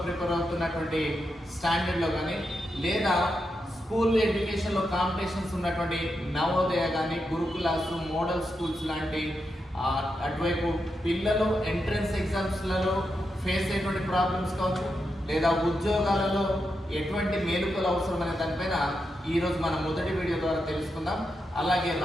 ప్రిపేర్ అవుతున్నటువంటి స్టాండర్డ్లో కానీ, లేదా స్కూల్ ఎడ్యుకేషన్లో కాంపిటీషన్స్ ఉన్నటువంటి నవోదయ కానీ, గురుకులాస్, మోడల్ స్కూల్స్ లాంటి అటువైపు పిల్లలు ఎంట్రన్స్ ఎగ్జామ్స్లలో ఫేస్ అయ్యేటువంటి ప్రాబ్లమ్స్ కావచ్చు, లేదా ఉద్యోగాలలో ఎటువంటి మేలుకలు అవసరం అనే దానిపైన ఈరోజు మన మొదటి వీడియో ద్వారా తెలుసుకుందాం. అలాగే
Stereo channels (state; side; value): normal; both; correlation 0.86